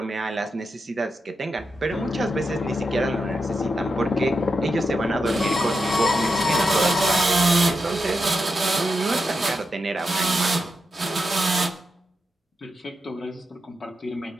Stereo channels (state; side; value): normal; both; correlation 0.86